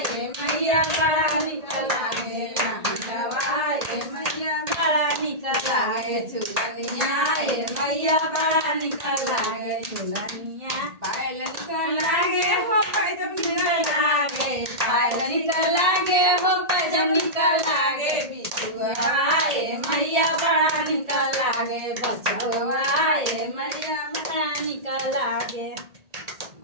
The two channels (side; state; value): left; late; 1.8 ms